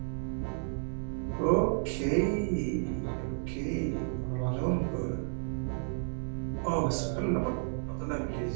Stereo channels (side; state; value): left; silent; 56 dB below the other